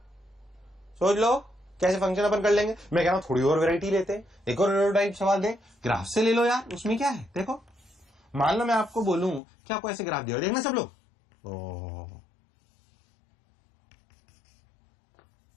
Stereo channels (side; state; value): right; drops out; at 9.4 s